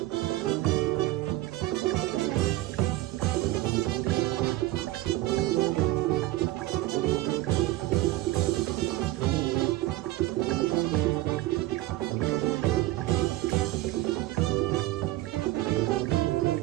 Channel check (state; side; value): quieter; left; 17.0 dB